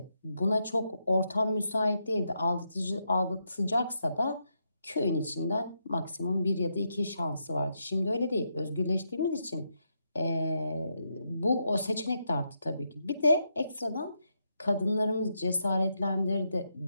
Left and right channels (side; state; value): both; inverted; correlation -0.82